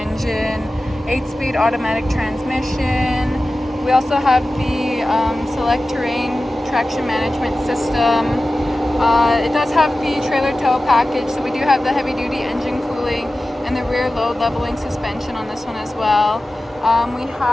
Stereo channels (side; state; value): both; normal; correlation 0.95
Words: 8-speed automatic transmission. We also have the Select Terrain traction management system. It does have the trailer tow package, so we do have the heavy duty engine cooling and the rear load leveling suspension on this one as well. We